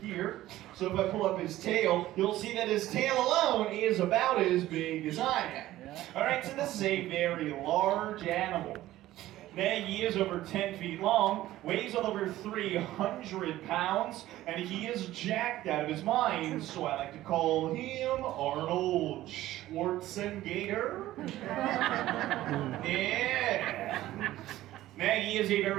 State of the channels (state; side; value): quieter; left; 15.1 dB